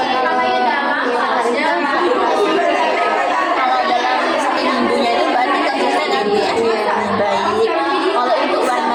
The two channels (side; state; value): both; identical; correlation 1.00